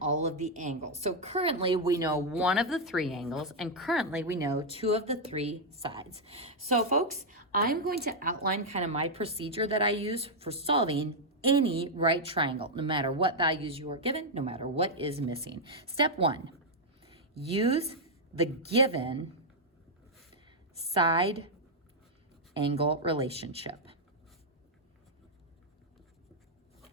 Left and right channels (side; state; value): both; normal; correlation -0.02